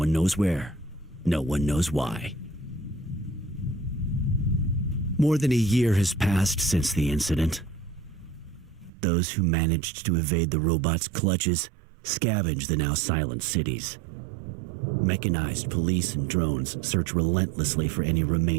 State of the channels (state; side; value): drops out; left; at 8.9 s